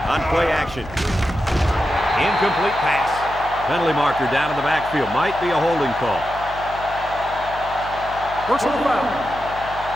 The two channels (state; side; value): noise; left; hum, 15 dB below the sound